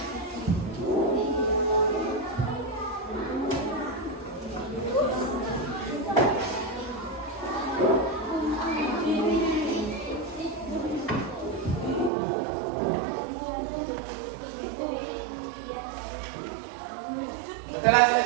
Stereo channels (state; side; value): drops out; left; at 12.1 s